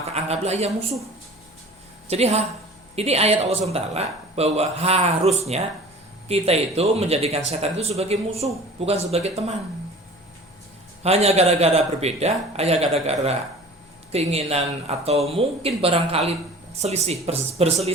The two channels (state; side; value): normal; both; correlation 0.43